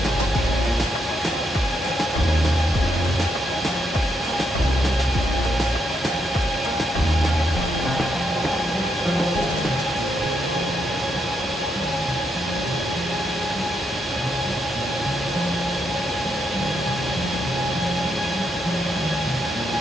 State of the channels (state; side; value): normal; both; correlation 0.79